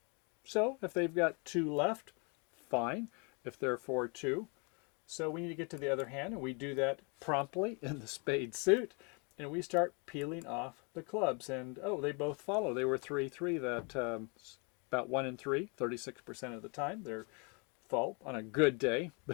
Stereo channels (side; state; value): right; quieter; 34.1 dB